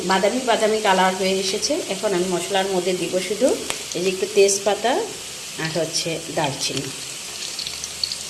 বাদামি বাদামি কালার হয়ে এসেছে। এখন আমি মশলার মধ্যে দিব শুধু এই যে একটু তেজপাতা আর হচ্ছে দারচিনি।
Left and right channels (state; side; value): identical; both; correlation 1.00